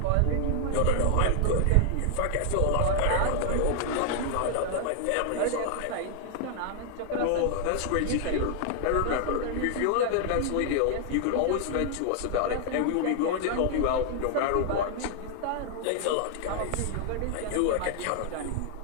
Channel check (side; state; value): both; different; correlation 0.00